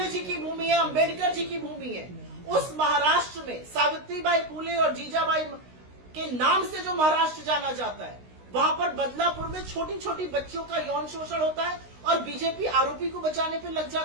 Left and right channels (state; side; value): late; left; 16 ms